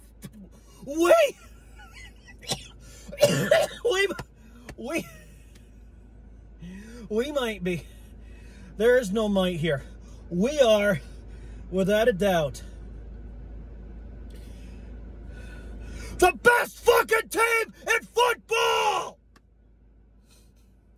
might be. There is no might here. We are, without a doubt, the best fucking team in football!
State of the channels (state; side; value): identical; both; correlation 1.00